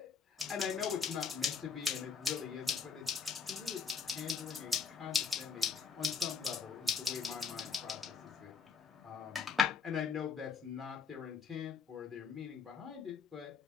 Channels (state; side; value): quieter; right; 5.9 dB